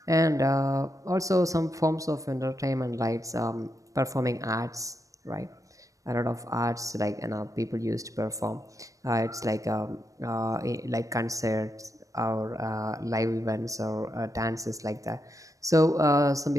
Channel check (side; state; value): left; late; 0.16 ms